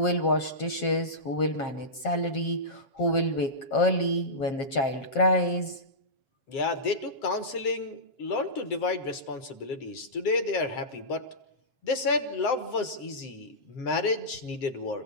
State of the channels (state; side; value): late; right; 7.4 ms